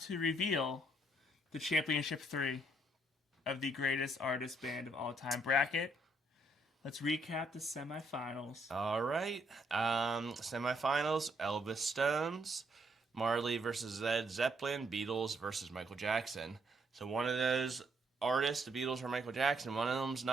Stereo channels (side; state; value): both; normal; correlation 0.71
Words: to reveal the Championship 3 of the Greatest Artist Band of All Time bracket. Let's recap the semifinals. All right. Semifinals: Elvis Stones, Marley versus Led Zeppelin, Beatles versus Michael Jackson. So one of those artists, the Beatles or Michael Jackson, one of them's